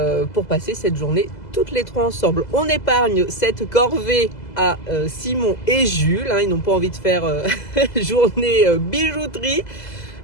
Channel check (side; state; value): right; late; 2.0 ms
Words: pour passer cette journée toutes les trois ensemble. On épargne cette corvée à Simon et Jules, hein, ils n'ont pas envie de faire journée bijouterie.